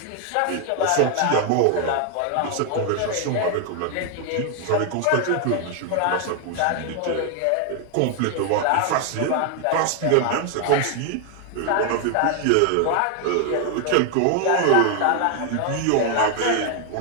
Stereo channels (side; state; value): both; different; correlation 0.01